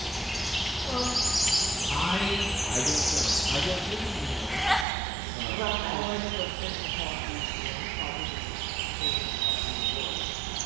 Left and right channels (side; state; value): left; drops out; at 4.9 s